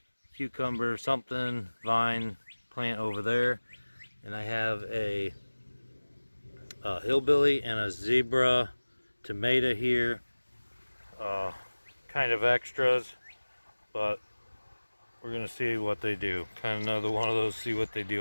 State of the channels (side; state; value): both; inverted; correlation -1.00